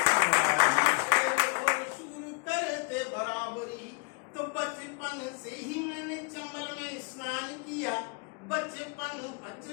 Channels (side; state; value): right; quieter; 34.0 dB